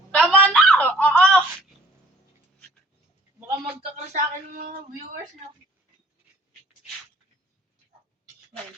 Tama na! Oo! Baka magkakal sa akin ng mga viewers na.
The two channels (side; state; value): both; normal; correlation 0.54